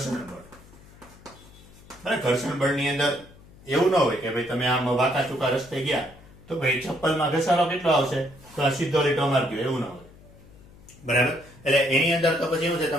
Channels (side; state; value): left; noise; hum, 23 dB below the sound